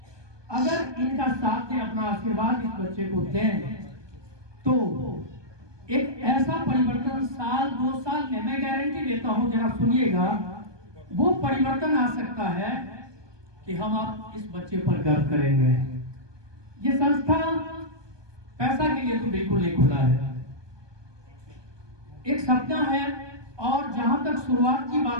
अगर इनका साथ में अपना आशीर्वाद इस बच्चे को दें तो एक ऐसा परिवर्तन साल 2 साल में, मैं गारंटी देता हूं, जरा सुनिएगा, वो परिवर्तन आ सकता है कि हम आप इस बच्चे पर गर्व करेंगे। ये संस्था पैसा के लिए तो बिल्कुल नहीं खुला है, एक सपना है। और जहां तक शुरुआत की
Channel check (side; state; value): left; late; 1.2 ms